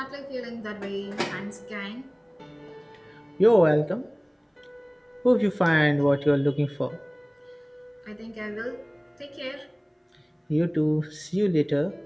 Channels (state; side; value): identical; both; correlation 1.00